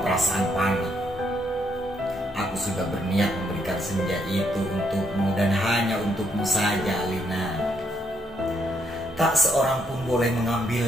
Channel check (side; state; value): both; normal; correlation 0.74